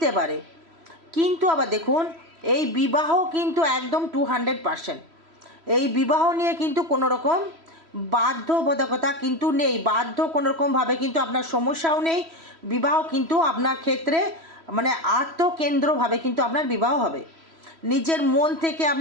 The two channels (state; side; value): late; left; 3.1 ms